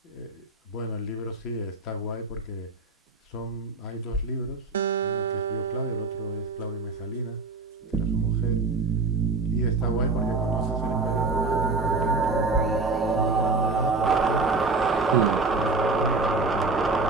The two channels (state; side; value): quieter; left; 3.8 dB